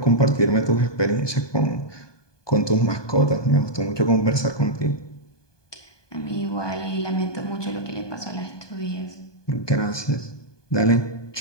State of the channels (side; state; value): right; late; 1.2 ms